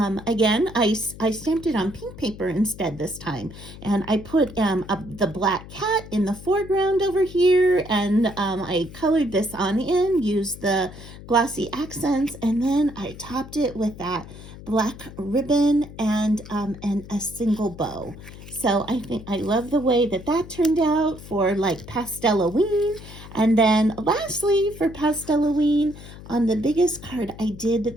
again, I stamped it on pink paper instead this time. And I put the black cat in the foreground over here. And I colored this on in, used the glossy accents. And then I topped it with that black ribbon and a single bow. So I think I love the way that that turned out for like Pastelween. And then lastly for Pastelween, on the biggest card, I did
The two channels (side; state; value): left; noise; hum, 15 dB below the sound